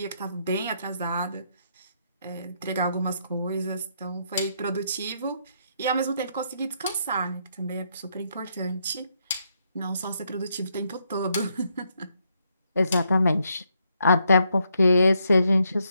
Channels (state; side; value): inverted; both; correlation -0.76